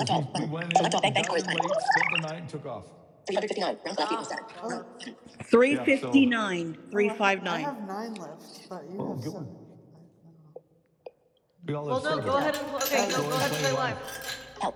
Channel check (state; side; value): identical; both; correlation 1.00